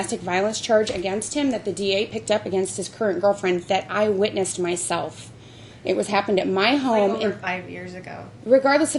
violence charge against him that the DA picked up against his current girlfriend that I witnessed myself. It was happened at my home. over 5 years ago. Regardless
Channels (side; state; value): both; identical; correlation 1.00